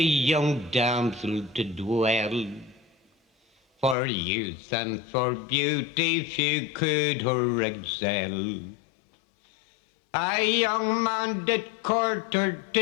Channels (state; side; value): drops out; right; at 4.0 s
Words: damsel to dwell, for youth and for beauty few could her excel. A young man did court her